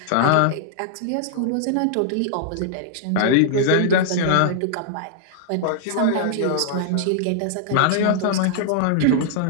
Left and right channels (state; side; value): different; both; correlation -0.01